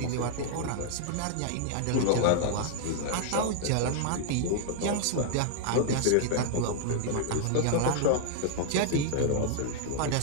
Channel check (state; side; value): different; both; correlation -0.01